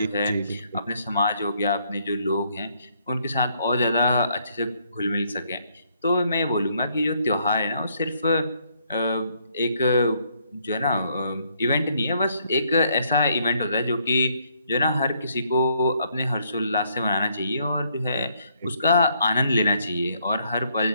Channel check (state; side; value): inverted; both; correlation -0.71